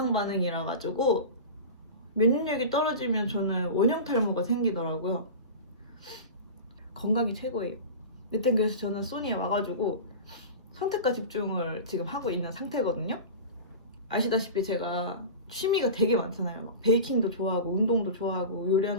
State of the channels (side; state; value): both; inverted; correlation -0.31